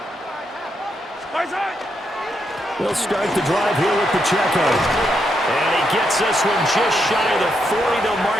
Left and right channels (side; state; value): both; normal; correlation 0.80